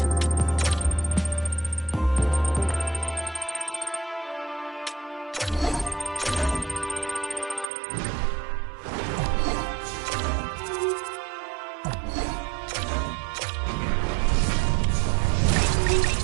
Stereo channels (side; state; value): left; drops out; at 7.7 s